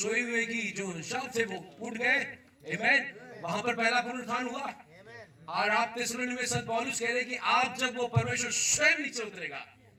हुए की जो शब्द थे वो उठ गए। आमीन। वहां पर पहला पुनरुत्थान हुआ। और आप थिस्सलुनीके में संत पौलुस कह रहे कि आप जब वो परमेश्वर स्वयं नीचे उतरेगा,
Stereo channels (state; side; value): identical; both; correlation 1.00